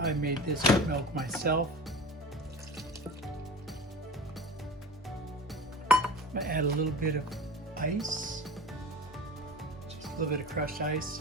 made this oat milk myself. I'm going to add a little bit of ice, just a little bit of crushed ice.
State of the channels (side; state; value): both; normal; correlation 0.35